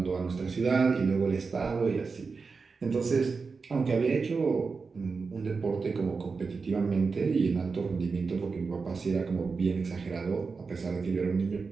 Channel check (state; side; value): quieter; left; 4.7 dB